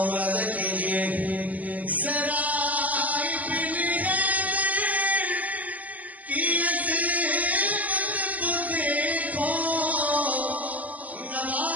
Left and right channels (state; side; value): late; left; 0.076 ms